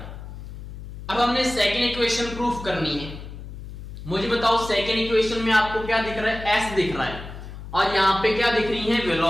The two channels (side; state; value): left; noise; hum, 11 dB below the sound